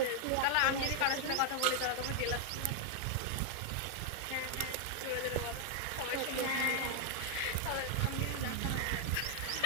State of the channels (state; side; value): different; both; correlation 0.00